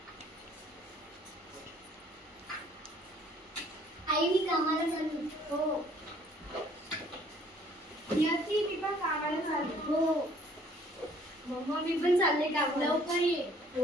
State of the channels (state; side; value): normal; both; correlation 0.59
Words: आई मी कामाला चालू. हो. नियती मी पण कामाला चालू. हो. मम्मा मी पण चालले कामाला. लवकर ये.